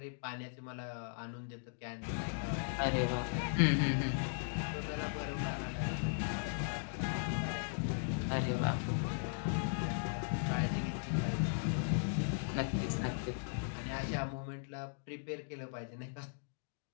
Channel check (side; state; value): right; silent; digital silence